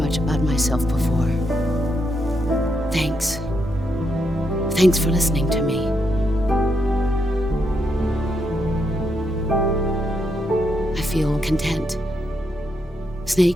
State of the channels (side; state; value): both; normal; correlation 0.80